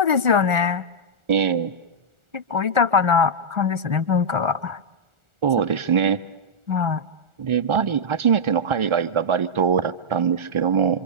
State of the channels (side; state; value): left; late; 1.4 ms